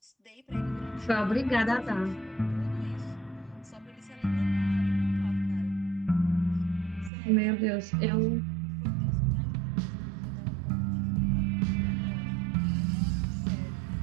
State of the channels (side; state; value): left; drops out; at 7.1 s